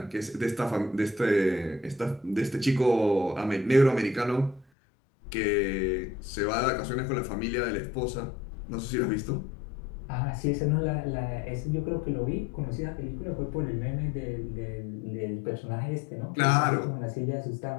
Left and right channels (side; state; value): right; drops out; at 4.7 s